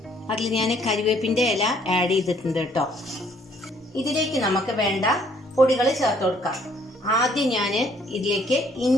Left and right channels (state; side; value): normal; both; correlation 0.63